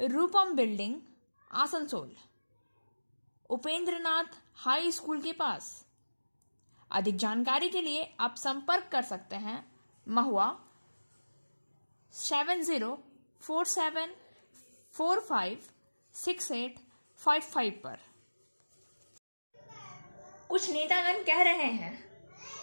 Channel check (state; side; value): inverted; both; correlation -1.00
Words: building, Asansol, Upendranath high school के पास। अधिक जानकारी के लिए आप संपर्क कर सकते हैं महुआ 7047456855 पर। कुछ नेतागण कह रहे हैं